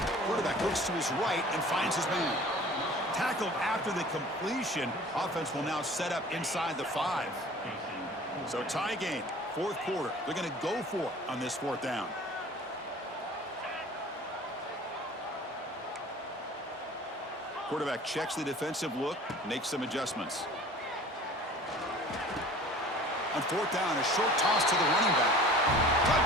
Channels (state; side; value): normal; both; correlation 0.45